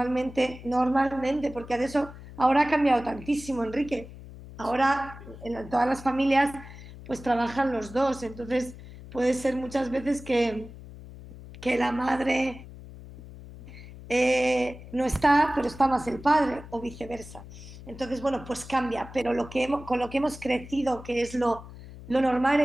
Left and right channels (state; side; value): noise; left; hum, 16 dB below the sound